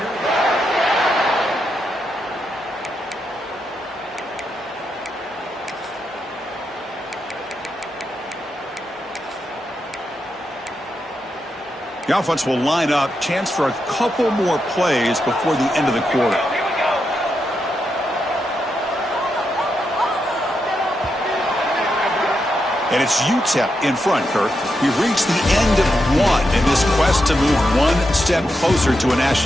The offense will line up. Chance for a couple more plays before the end of the quarter. And it's Utep in front, Kirk. We've reached the end of one in this quest to move one step closer to a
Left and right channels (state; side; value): normal; both; correlation 0.84